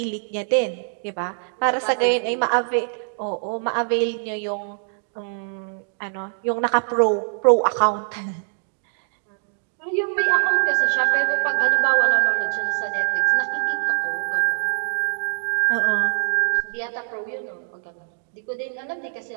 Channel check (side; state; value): left; silent; digital silence